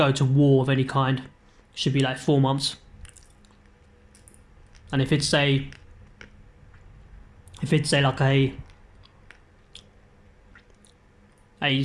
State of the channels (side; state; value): both; identical; correlation 1.00